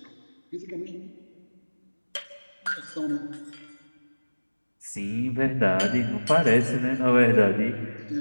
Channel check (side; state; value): both; inverted; correlation -1.00